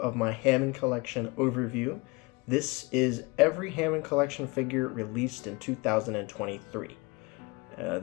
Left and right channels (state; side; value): quieter; right; 26.1 dB